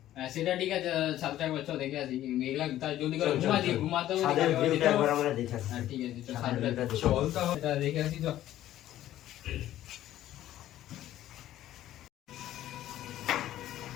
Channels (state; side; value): quieter; right; 13.3 dB